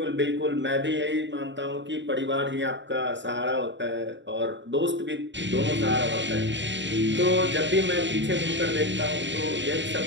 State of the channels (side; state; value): left; late; 0.53 ms